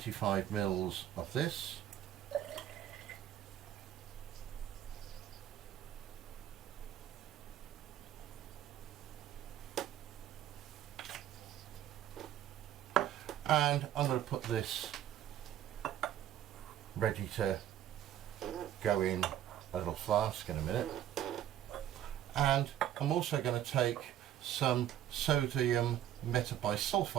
mils of this. And I'm going to put this ready to go in a little flask in a minute. And I'm also going to take some sodium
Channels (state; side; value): quieter; left; 11.5 dB